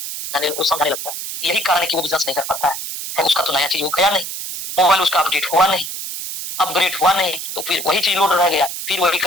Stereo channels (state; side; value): noise; right; hiss, 7 dB below the sound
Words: को समझने लगता है। यही कारण है कि वो बिजनेस नहीं कर पाता है। उसका तो नया चीज वो गया नहीं, मोबाइल उसका अपडेट हुआ नहीं, अपग्रेड हुआ नहीं, तो फिर वही चीज लोड रह गया, फिर वही